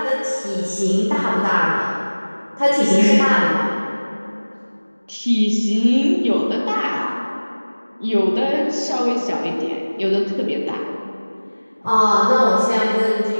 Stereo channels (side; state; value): both; inverted; correlation -1.00